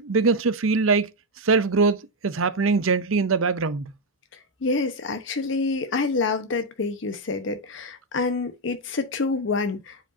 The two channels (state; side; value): normal; both; correlation 0.03